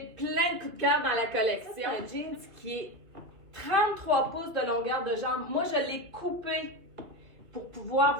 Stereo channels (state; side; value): late; left; 2.5 ms